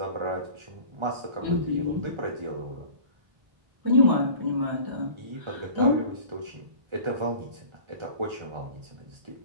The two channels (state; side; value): late; left; 1.4 ms